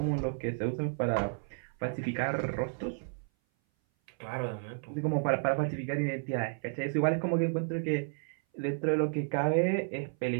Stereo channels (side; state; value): left; silent; 56 dB below the other